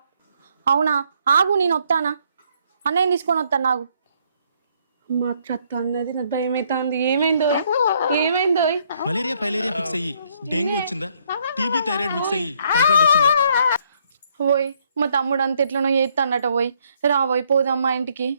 అవునా, ఆగు నేను వస్తానా, అన్నయ్య తీసుకొని వస్తాను. నాకు మా అత్త అన్నది, నాకు భయం అవుతుంది. ఏమైందో ఏమైందో? మలేరియా ఫైలేరియా ఫిక్స్ అయ్యి డెంగ్యూ వచ్చిందా, టీబీ థైరాయిడ్ మిక్స్ అయ్యి టైఫాయిడ్ వచ్చిందా? పోయి మా తమ్ముడు అంత ఎట్లనో చేస్తాడట. పోయి రాబోయ్ పోదాం మా ఇంటికి.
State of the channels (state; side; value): inverted; both; correlation -0.69